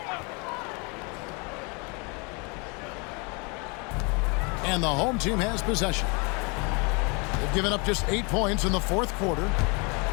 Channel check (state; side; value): quieter; right; 31.7 dB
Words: And the home team has possession. They've given up just 8 points in the fourth quarter.